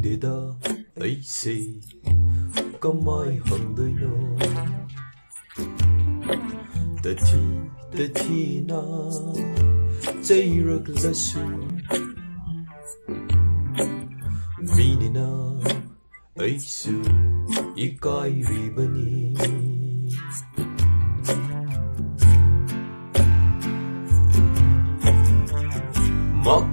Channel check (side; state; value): both; inverted; correlation -1.00